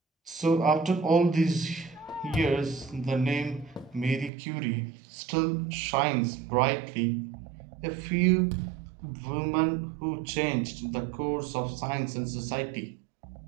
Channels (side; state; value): left; drops out; at 4.3 s